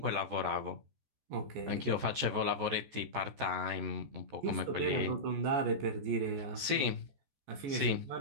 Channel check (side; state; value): left; late; 14 ms